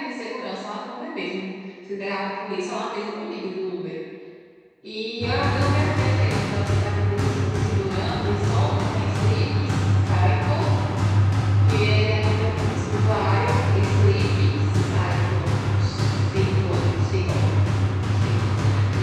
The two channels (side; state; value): both; identical; correlation 1.00